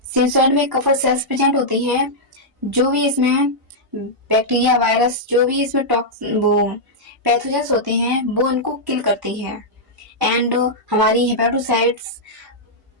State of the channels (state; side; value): normal; both; correlation -0.07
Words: सिनुसॉइड में कफर सेल्स प्रेजेंट होती हैं, जो भी इसमें बैक्टीरिया वायरस जो भी इसमें वो पैथोजेंस होते हैं वो उनको किल करती है, एंड हमारी हेपेटोसाइट्स